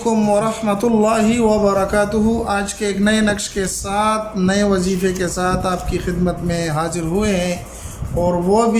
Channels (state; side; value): identical; both; correlation 1.00